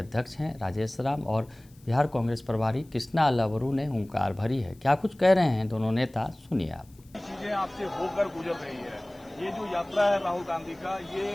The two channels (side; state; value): left; noise; hiss, 29 dB below the sound